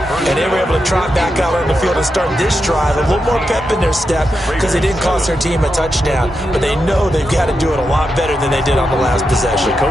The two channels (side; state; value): both; normal; correlation 0.86